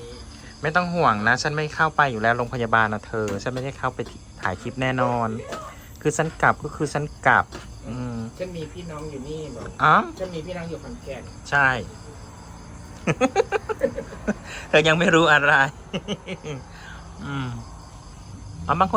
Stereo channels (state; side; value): identical; both; correlation 1.00